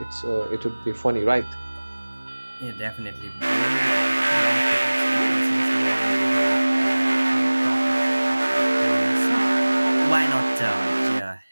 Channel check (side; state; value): both; inverted; correlation -1.00